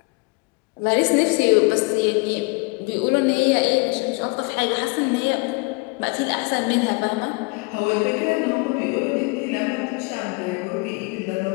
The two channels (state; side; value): quieter; right; 29.0 dB